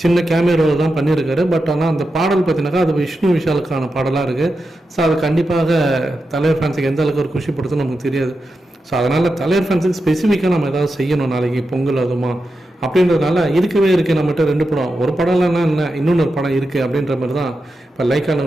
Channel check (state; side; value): normal; both; correlation 0.89